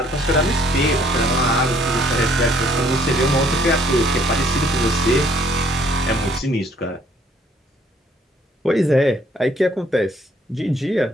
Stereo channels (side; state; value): both; normal; correlation 0.62